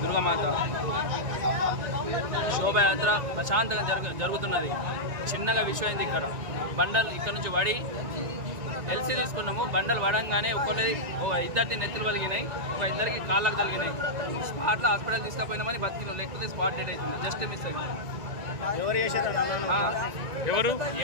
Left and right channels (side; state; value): left; late; 1.9 ms